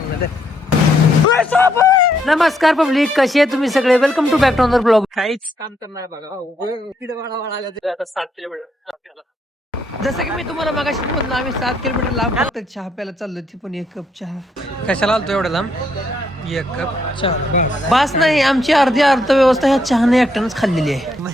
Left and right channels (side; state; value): both; normal; correlation 0.73